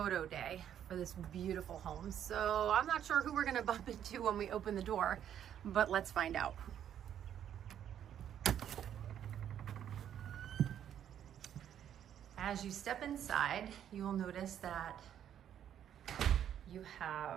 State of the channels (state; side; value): quieter; left; 9.9 dB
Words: day for this beautiful home, so I'm not sure who we're gonna bump into when we open the door, but let's find out. As you step inside, you will notice that you